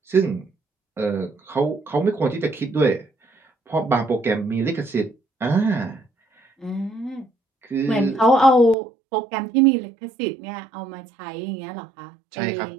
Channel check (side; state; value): left; drops out; at 8.8 s